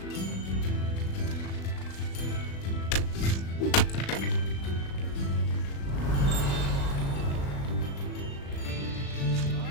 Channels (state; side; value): late; right; 36 ms